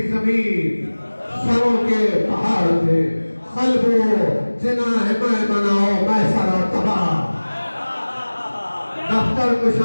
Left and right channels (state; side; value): inverted; both; correlation -1.00